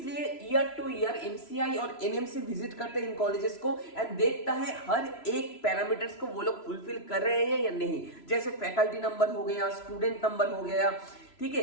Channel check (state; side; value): late; right; 3.0 ms